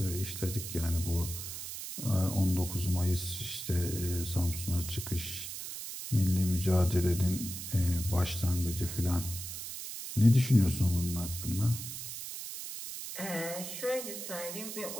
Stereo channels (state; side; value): noise; right; hiss, 8 dB below the sound